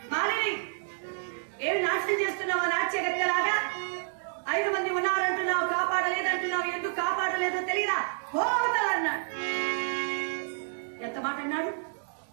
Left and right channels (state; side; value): silent; left; digital silence